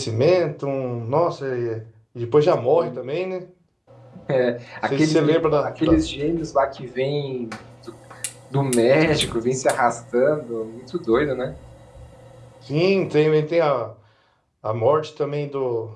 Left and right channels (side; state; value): both; identical; correlation 1.00